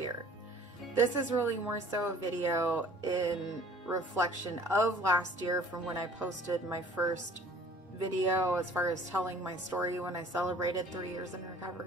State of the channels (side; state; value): both; normal; correlation 0.51